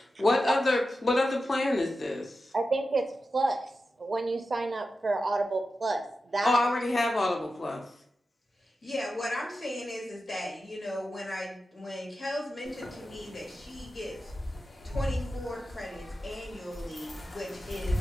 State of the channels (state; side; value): normal; both; correlation 0.91